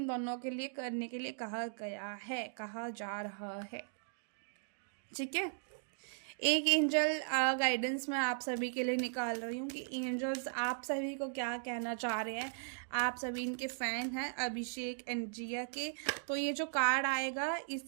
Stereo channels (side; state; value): left; silent; digital silence